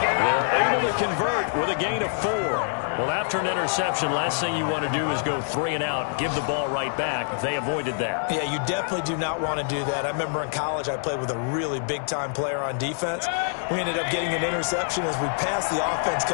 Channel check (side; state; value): right; silent; digital silence